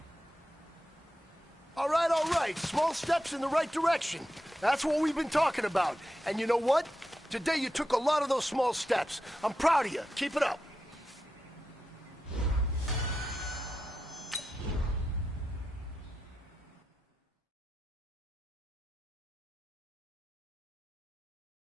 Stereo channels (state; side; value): normal; both; correlation 0.89